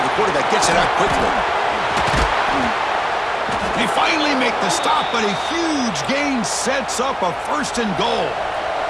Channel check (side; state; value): both; identical; correlation 1.00